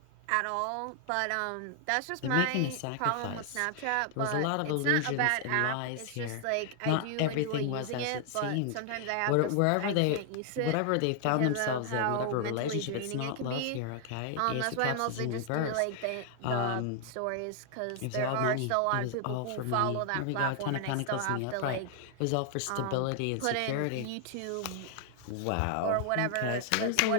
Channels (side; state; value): both; different; correlation 0.00